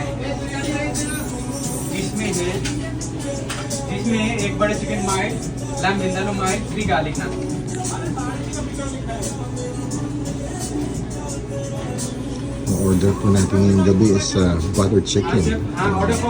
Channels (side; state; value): both; identical; correlation 1.00